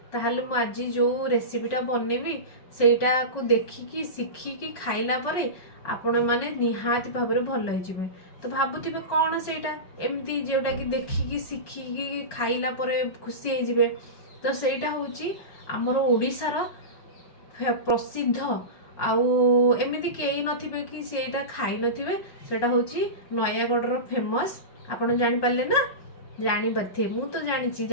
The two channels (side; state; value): right; late; 5.5 ms